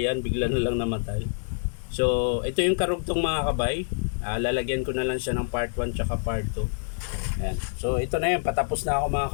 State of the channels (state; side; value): silent; right; digital silence